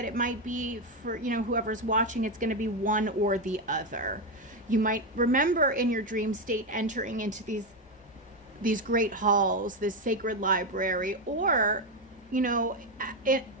it might be for, whoever's watching, it's going to be one or the other. You might remember in your dream state entering into these great halls, this sacred library, or,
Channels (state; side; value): normal; both; correlation 0.08